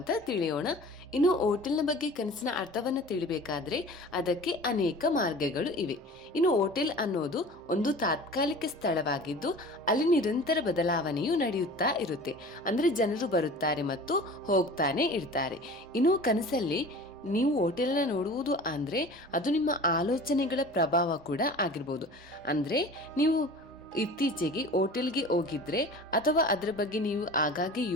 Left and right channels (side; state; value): both; normal; correlation 0.40